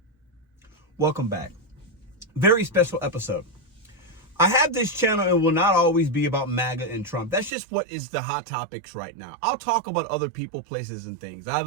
Welcome back. Very special episode. I have this channel and will not always be about MAGA and Trump. That's just what is the hot topics right now. I'll talk about other people, places, and things. I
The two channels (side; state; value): left; drops out; at 7.5 s